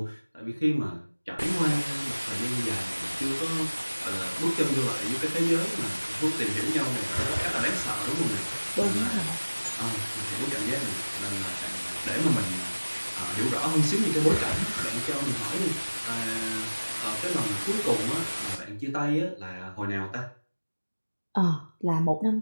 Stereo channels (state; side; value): inverted; both; correlation -1.00